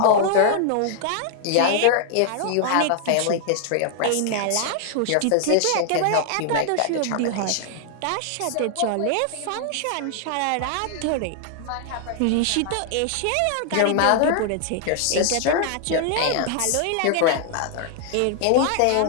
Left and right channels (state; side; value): different; both; correlation 0.00